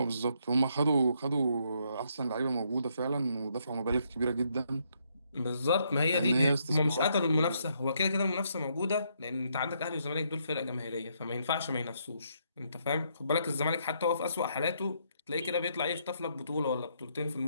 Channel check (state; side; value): inverted; both; correlation -0.74